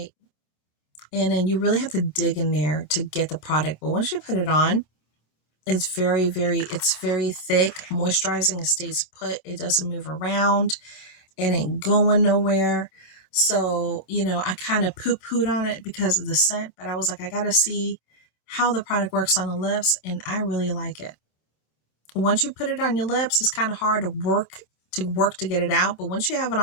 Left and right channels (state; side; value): late; right; 26 ms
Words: and then you really have to dig in there to get the product. But once you put it on, it's very thick, moisturizing. It stays put. It doesn't move around. It ain't going nowhere. So, you know, I kind of poo-pooed on it because of the scent, but I was like, I got to see how the product works on the lips, and I really like it. Once you put it on your lips, it's kind of hard to work to get it out, but once you have it